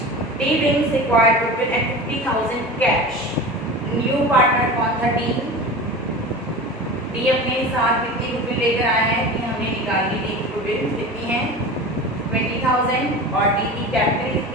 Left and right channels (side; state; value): both; normal; correlation 0.32